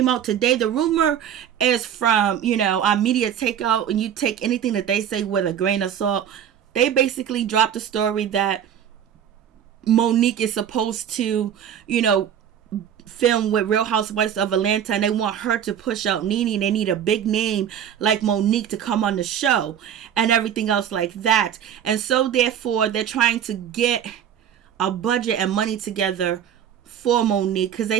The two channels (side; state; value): left; quieter; 9.3 dB